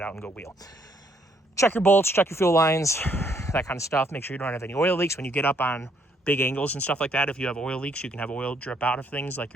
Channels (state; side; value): normal; both; correlation 0.69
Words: out and go wheel. Check your bolts, check your fuel lines, that kind of stuff. Make sure you don't have any oil leaks when you get up on big angles and stuff like that. If you have oil leaks, you can have oil drip out of things like